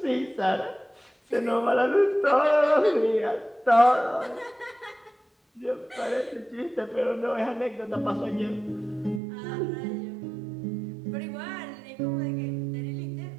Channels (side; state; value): left; drops out; at 9.2 s